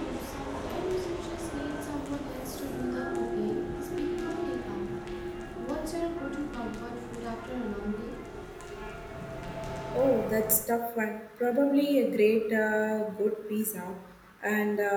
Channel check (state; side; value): identical; both; correlation 1.00